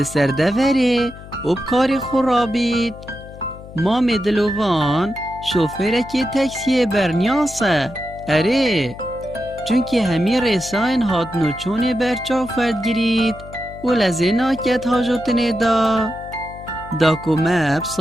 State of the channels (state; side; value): noise; left; hum, 16 dB below the sound